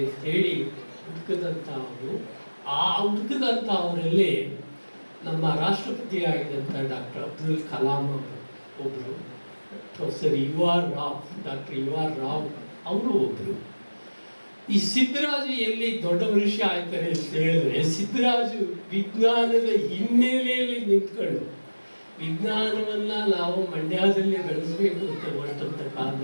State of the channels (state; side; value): inverted; both; correlation -1.00